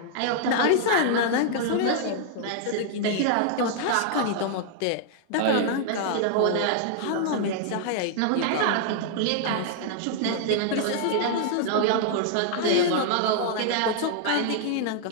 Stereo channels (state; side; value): different; both; correlation -0.01